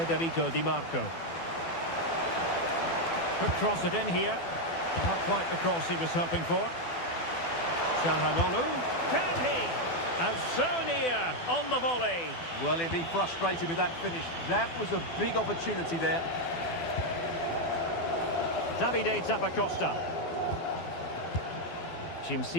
Di Marco. Could cross it in here. Not quite the cross he was hoping for. Çalhanoğlu. Can he? And so near on the volley. Well, he'll be frustrated with that finish. That was a big opportunity there. Davide Zappacosta.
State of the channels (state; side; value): late; right; 12 ms